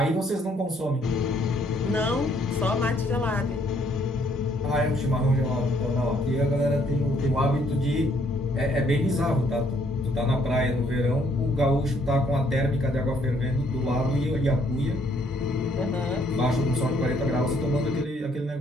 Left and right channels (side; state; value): both; normal; correlation 0.67